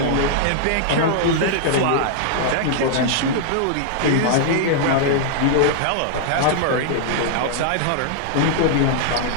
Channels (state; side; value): different; both; correlation -0.01